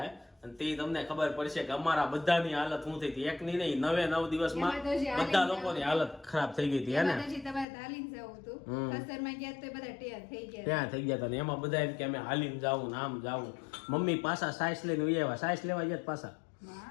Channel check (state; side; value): drops out; right; at 7.7 s